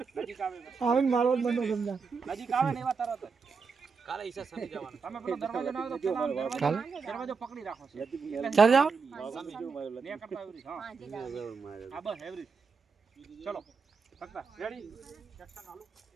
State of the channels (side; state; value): left; quieter; 5.2 dB